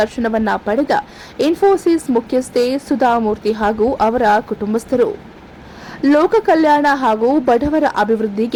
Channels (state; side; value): identical; both; correlation 1.00